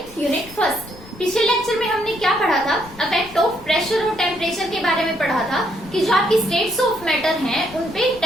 unit first. पिछले लेक्चर में हमने क्या पढ़ा था? इफेक्ट ऑफ प्रेशर और टेम्परेचर के बारे में पढ़ा था कि जो आपकी स्टेट्स ऑफ मैटर हैं उन पे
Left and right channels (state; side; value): noise; left; rumble, 20 dB below the sound